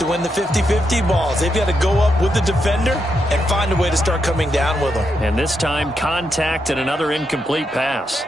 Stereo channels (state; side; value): normal; both; correlation 0.82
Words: win the 50-50 balls. They've got to go up with the defender and find a way to start coming down with them. And this time, contact and another incomplete pass.